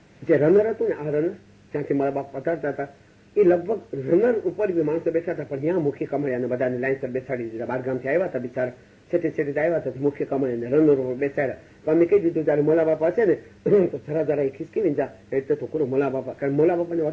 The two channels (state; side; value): identical; both; correlation 1.00